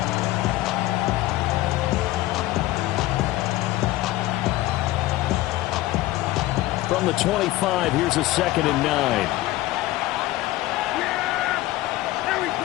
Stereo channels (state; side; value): quieter; right; 16.9 dB